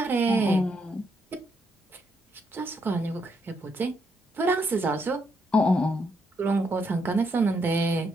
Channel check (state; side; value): normal; both; correlation 0.76